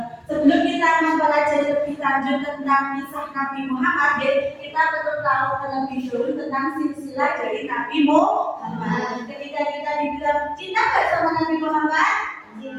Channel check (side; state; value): both; identical; correlation 1.00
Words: Sebelum kita mempelajari lebih lanjut tentang kisah Nabi Muhammad, kita perlu tahu terlebih dahulu tentang silsilah dari Nabi Muhammad. Ketika kita dibilang cinta nggak sama Nabi Muhammad?